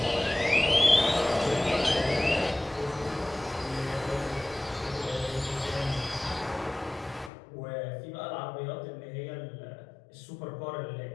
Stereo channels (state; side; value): drops out; right; at 7.3 s